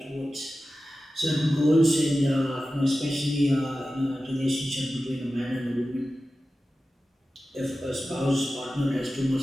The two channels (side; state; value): both; normal; correlation 0.94